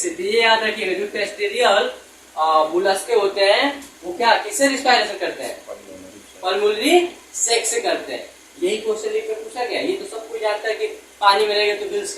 तो ये याद रखिएगा, जो टेरेस्ट्रियल मुलस्के होते हैं वो क्या किससे रिस्पायरेशन करते हैं? पल्मोनरी सेक से करते हैं। यही क्वेश्चन लिख कर पूछा गया। ये तो सब कोई जानता है कि पानी में रहेगा तो गिल्स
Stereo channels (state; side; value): identical; both; correlation 1.00